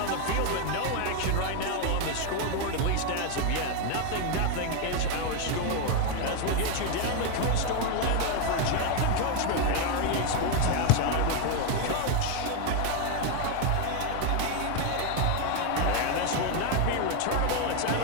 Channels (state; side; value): different; both; correlation 0.01